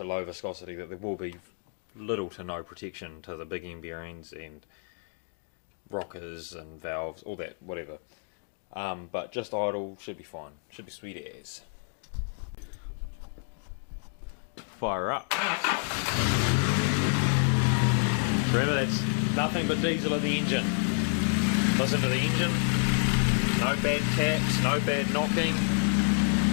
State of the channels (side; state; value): right; silent; 59 dB below the other